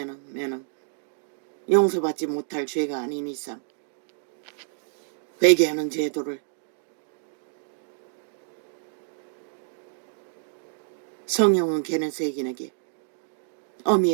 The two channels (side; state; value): left; silent; digital silence